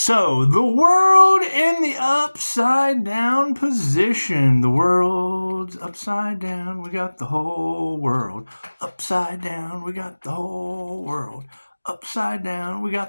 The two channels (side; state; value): both; inverted; correlation -1.00